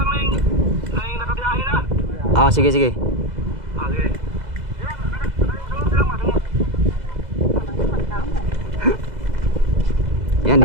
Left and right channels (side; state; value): left; late; 2.0 ms